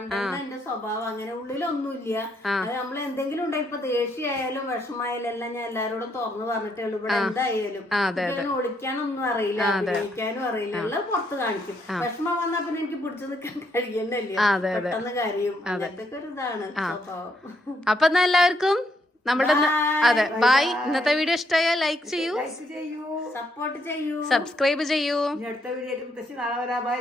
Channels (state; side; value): normal; both; correlation 0.74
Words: എന്റെ സ്വഭാവം അങ്ങനെ ഉള്ളിലൊന്നുമില്ല. അത് നമ്മൾ എന്തെങ്കിലും ഉണ്ടെങ്കിൽ ഇപ്പൊ ദേഷ്യമായാലും വിഷമായാലും എല്ലാം ഞാൻ എല്ലാരോടും തുറന്നു പറഞ്ഞിട്ടേ ഉള്ളൂ. ഇവിടെ എന്തായാലും ഒളിക്കാനൊന്നും അറിയില്ല, അഭിനയിക്കാനും അറിയില്ല, എല്ലാം പുറത്ത് കാണിക്കും. വിഷമം വന്നാ പിന്നെ എനിക്ക് പിടിച്ചു നിൽക്കാൻ കഴിയുന്നല്ലേ, പെട്ടെന്ന് കാര്യം. അങ്ങനത്തെ ഒരു ഇതാണ് സ്വഭാവം. അപ്പൊ എന്നാ എല്ലാവർക്കും നമ്മുടെ അതെ ബൈ. ഇന്നത്തെ വീഡിയോ ഇഷ്ടമായാൽ ലൈക്ക് ചെയ്യൂ, സപ്പോർട്ട് ചെയ്യൂ, സബ്സ്ക്രൈബ് ചെയ്യൂ. അടുത്ത വീഡിയോ ബൈ